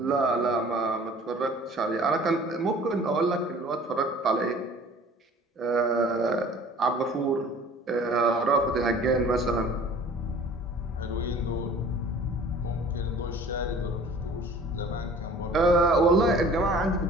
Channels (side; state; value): both; normal; correlation 0.48